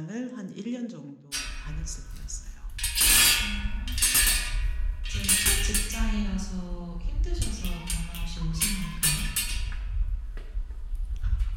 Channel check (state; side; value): identical; both; correlation 1.00